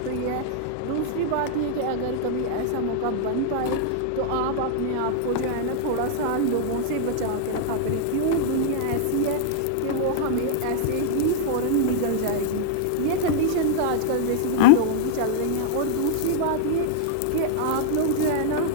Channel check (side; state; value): both; different; correlation -0.01